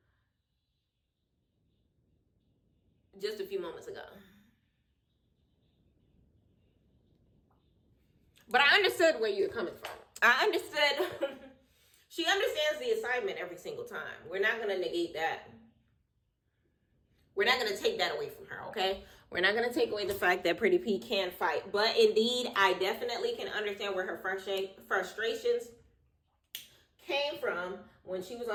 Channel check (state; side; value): identical; both; correlation 1.00